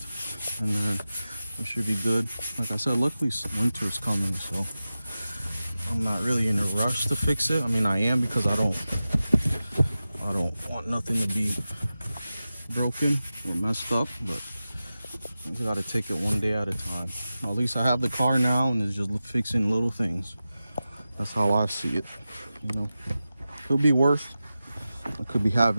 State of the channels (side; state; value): both; inverted; correlation -0.94